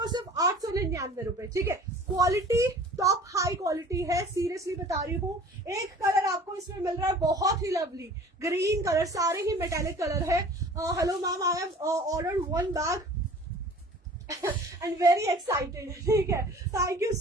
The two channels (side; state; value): both; normal; correlation 0.46